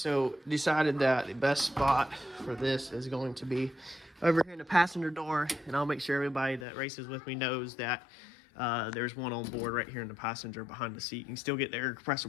decided that the best spot for this is going to be over here in the passenger door, and I'll make sure everybody that races with me knows that there's one on board right here in the passenger behind the seat. You can still get the air compressor.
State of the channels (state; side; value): drops out; right; at 6.7 s